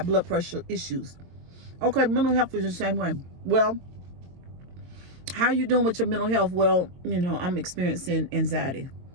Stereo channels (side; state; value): left; late; 22 ms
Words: blood pressure issues. Okay, mental health is the same way. Well, how you doing with your mental health? Well, I'm experiencing anxiety.